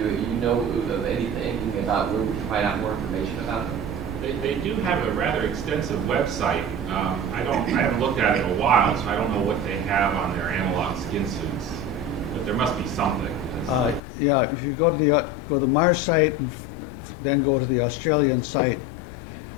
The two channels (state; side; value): drops out; right; at 14.0 s